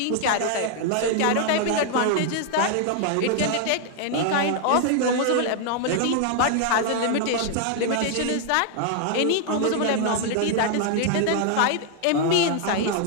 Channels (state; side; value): different; both; correlation 0.00